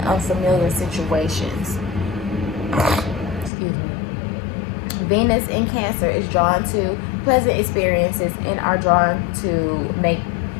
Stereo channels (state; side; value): drops out; right; at 3.5 s